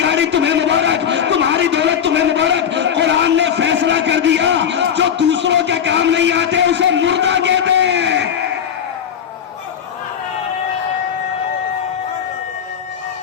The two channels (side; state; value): right; quieter; 8.3 dB